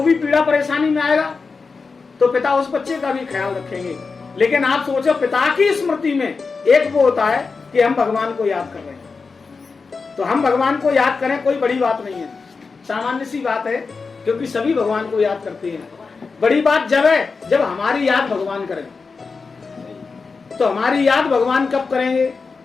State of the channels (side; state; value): right; quieter; 4.6 dB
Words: भी पीड़ा परेशानी में आएगा तो पिता उस बच्चे का भी ख्याल रखेंगे। लेकिन आप सोचो, पिता की स्मृति में एक वो होता है कि हम भगवान को याद कर रहे हैं, तो हम भगवान को याद करें कोई बड़ी बात नहीं है, सामान्य सी बात है, क्योंकि सभी भगवान को याद करते हैं। बड़ी बात जब है जब हमारी याद भगवान करें। तो हमारी याद भगवान कब करेंगे?